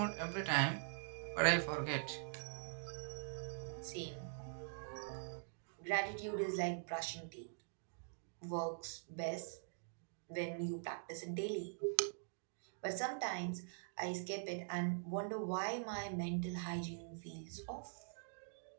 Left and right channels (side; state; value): left; silent; digital silence